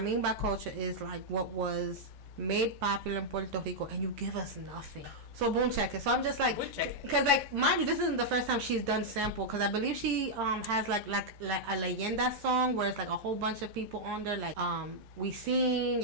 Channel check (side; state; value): left; late; 13 ms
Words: by culture is like what was made popular in Puerto Rico, and you give us nothing. So boom, check it. So I'm just like, because like, mind you, this isn't the first time she's done sample, because I believe she has like a leyenda song where it's like a whole bunch of people on there, like Wisin,